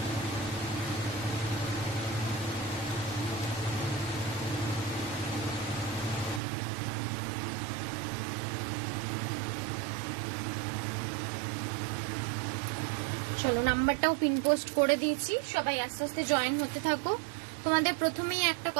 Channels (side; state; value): left; drops out; at 6.4 s